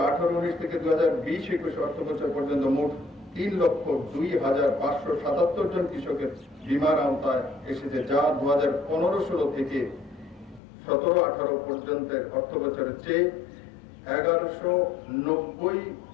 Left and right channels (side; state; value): right; drops out; at 10.6 s